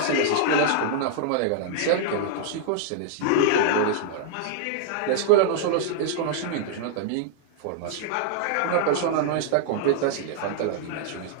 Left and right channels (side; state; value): both; different; correlation -0.01